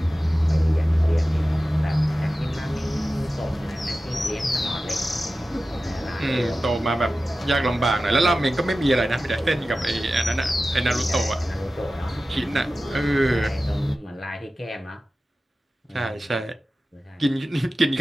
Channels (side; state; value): both; normal; correlation 0.95